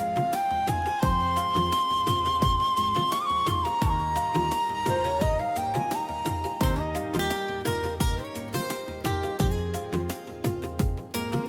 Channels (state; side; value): identical; both; correlation 1.00